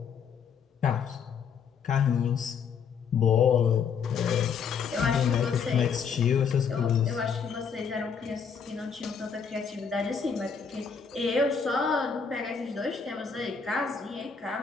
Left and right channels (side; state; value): right; quieter; 6.4 dB